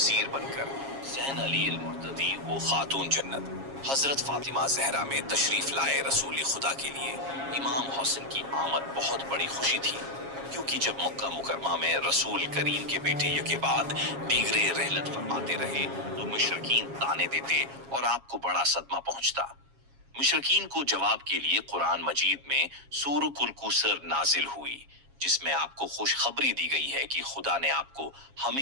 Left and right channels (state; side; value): late; left; 7.3 ms